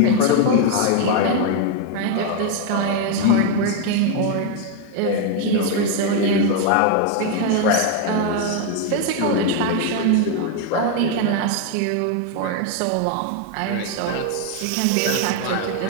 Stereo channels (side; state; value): both; different; correlation 0.01